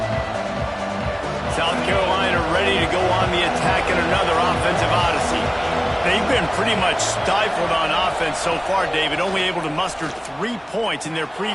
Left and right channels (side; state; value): both; identical; correlation 1.00